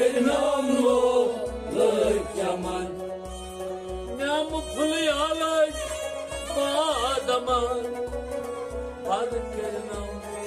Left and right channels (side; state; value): both; identical; correlation 1.00